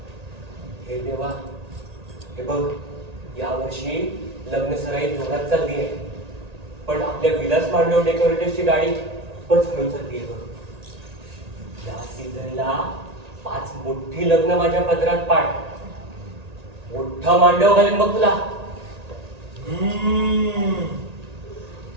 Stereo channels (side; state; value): left; late; 1.8 ms